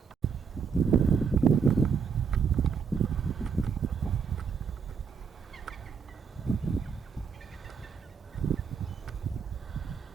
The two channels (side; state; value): left; quieter; 6.1 dB